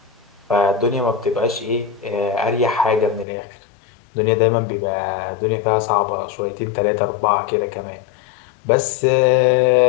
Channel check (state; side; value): drops out; right; at 3.2 s